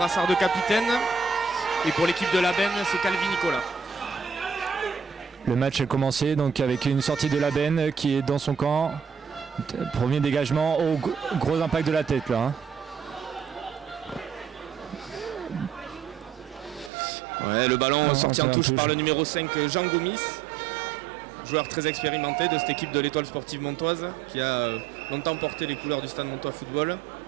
de capitaine. Et pour l'équipe de la Benne, c'est Calvi Nicolas. Le match a commencé donc avec une sortie de la Benne qui est dans son camp. Premier dégagement, gros impact de la tête là. Hein. Ouais, le ballon sorti en touche par le numéro 5 Jean Gomis, joueur très expérimenté de cette équipe de l'Étoile sportive montoise qui a longtemps porté les couleurs du Stade Montois Football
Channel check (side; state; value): left; drops out; at 16.9 s